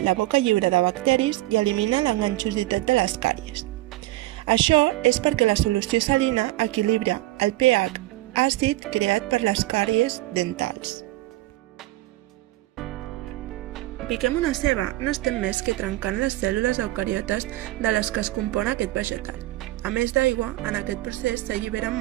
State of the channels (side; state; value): left; quieter; 17.6 dB